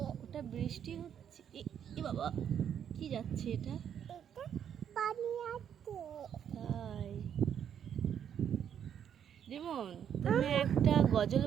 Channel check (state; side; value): quieter; left; 8.9 dB